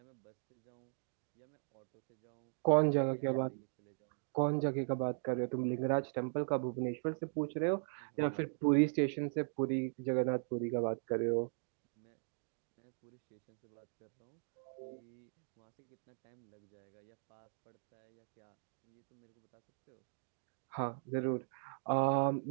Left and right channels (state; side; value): silent; left; digital silence